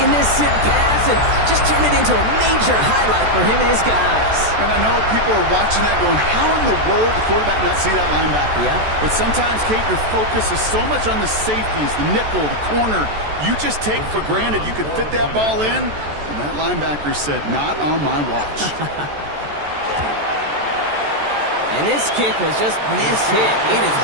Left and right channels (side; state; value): left; late; 14 ms